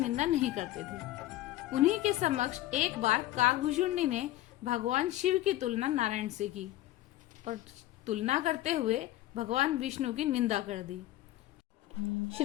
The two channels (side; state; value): right; quieter; 15.4 dB